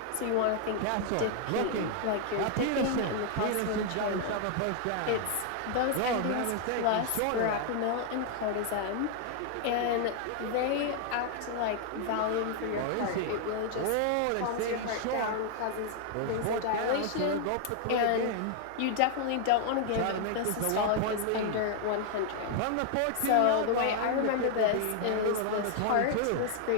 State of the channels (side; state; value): both; different; correlation 0.00